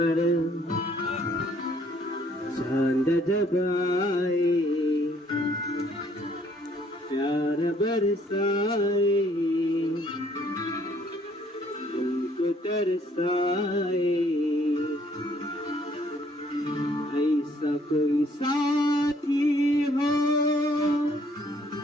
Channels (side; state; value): both; normal; correlation 0.64